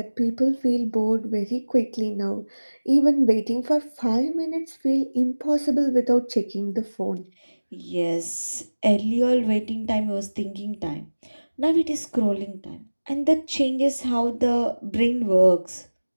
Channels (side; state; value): both; inverted; correlation -1.00